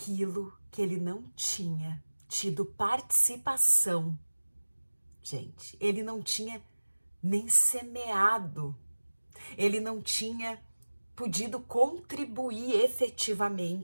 que ele não tinha tido participação. Gente, ele não tinha nem semeado, ele não tinha podido contribuir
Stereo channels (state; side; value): inverted; both; correlation -1.00